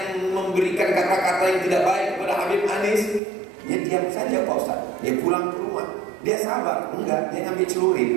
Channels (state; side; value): drops out; left; at 3.2 s